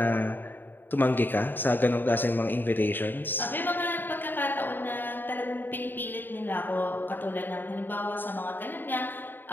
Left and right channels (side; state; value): right; late; 0.093 ms